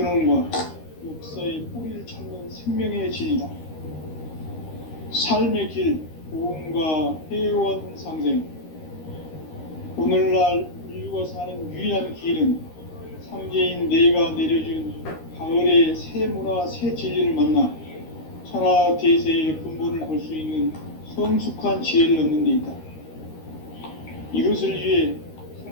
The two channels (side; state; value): right; late; 13 ms